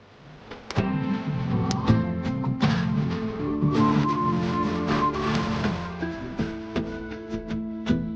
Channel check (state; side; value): identical; both; correlation 1.00